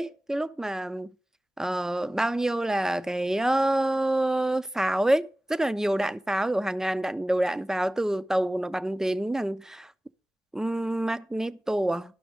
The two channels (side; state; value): both; normal; correlation 0.97